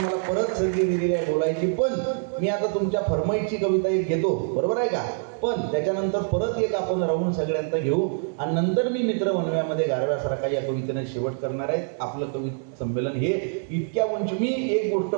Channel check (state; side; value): silent; left; digital silence